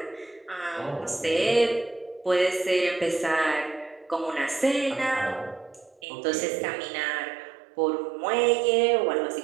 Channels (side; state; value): left; drops out; at 6.0 s